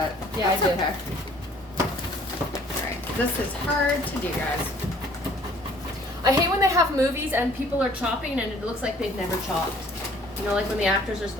Yeah, That's I do. okay. Alright, this is hard to do, guys. I hate when they have movies and people are chopping and it looks like they've never chopped. You know, like when the actors are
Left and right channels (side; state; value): both; normal; correlation 0.56